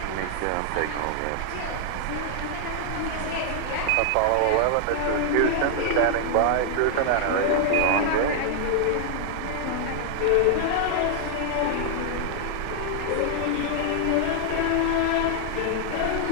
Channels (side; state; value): both; different; correlation -0.01